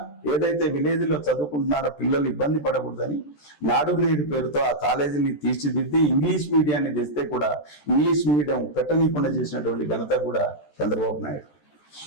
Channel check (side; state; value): right; late; 14 ms